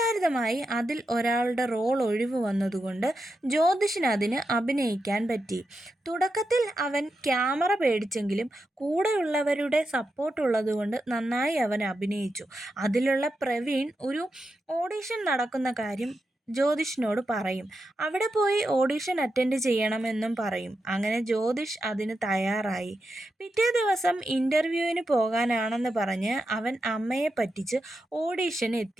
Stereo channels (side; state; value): both; normal; correlation 0.87